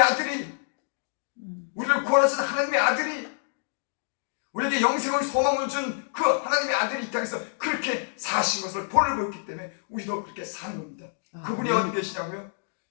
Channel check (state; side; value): silent; right; digital silence